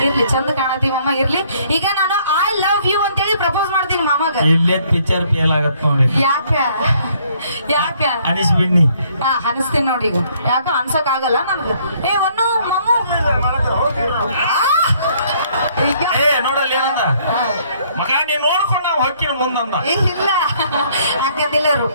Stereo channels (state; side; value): inverted; both; correlation -0.64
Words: ಇರ್ಲಿ ಚಂದ ಕಾಣತಿ ಮಾಮ. ಇರ್ಲಿ ಈಗ ನಾನು ಐ ಲವ್ ಯು ಅಂತೇಳಿ ಪ್ರಪೋಸ್ ಮಾಡ್ತೀನಿ ಮಾಮಗ. ಇಲ್ಲೇ ಪಿಕ್ಚರ್ ಫೇಲ್ ಆಗತ್ ನೋಡಿ. ಯಾಕ ಅನಿಸ್ಬಿಡ್ನಿ. ಅನಿಸ್ತೀನಿ ನೋಡಿ. ಈಗ ಯಾಕ ಅನ್ಸಕ್ ಆಗಲ್ಲ ನನ್ಗ. ಒನ್ನು ಮಾಮು ನೋಡಲ್ಲ ಏನಂದ ಮಗ ನೀನ್ ನೋಡ್ಕೊಂಡು ನಾವು ಹೊಕ್ಕಿನ ಮುಂದಂದ. ಇಲ್ಲ ಹಂಗಂದಿಲ್ಲ